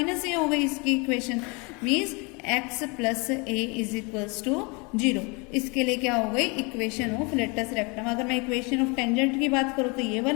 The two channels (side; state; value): right; quieter; 29.9 dB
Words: a हो गई इसकी equation, means x plus a is equals to 0। इसके लिए क्या हो गई, इक्वेशन ऑफ लेटस रेक्टम। अगर मैं इक्वेशन ऑफ टेंजेंट की बात करूँ तो ये